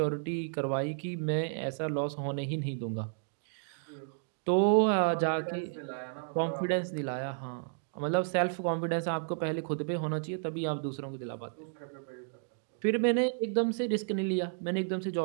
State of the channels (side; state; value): left; silent; digital silence